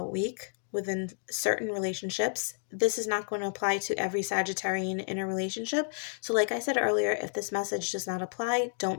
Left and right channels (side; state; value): right; silent; 57 dB below the other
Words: week within certain relationships. This is not going to apply to every Sagittarian in a relationship. So like I said earlier, if this message does not apply,